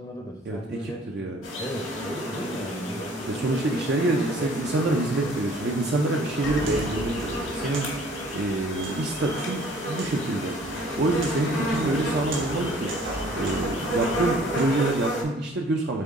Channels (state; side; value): normal; both; correlation 0.54